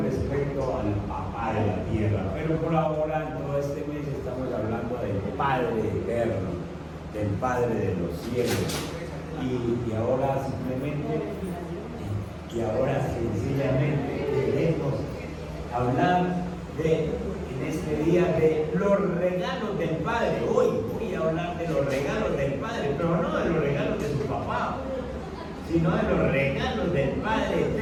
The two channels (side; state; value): both; identical; correlation 1.00